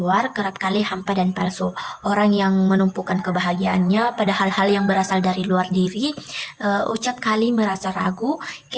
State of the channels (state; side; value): identical; both; correlation 1.00